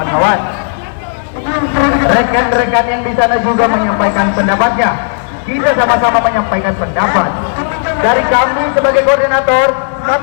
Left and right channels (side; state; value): right; silent; digital silence